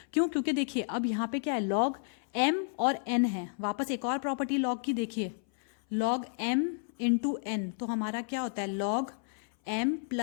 क्यों? क्योंकि देखिए अब यहाँ पे क्या है, लॉग m और n है। वापस एक और प्रॉपर्टी लॉग की देखिए, लॉग m इंटू n, तो हमारा क्या होता है, log m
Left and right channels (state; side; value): silent; right; 57 dB below the other